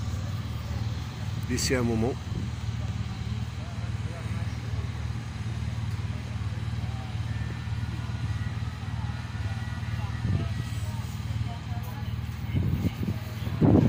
d'ici un moment.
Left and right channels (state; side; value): identical; both; correlation 1.00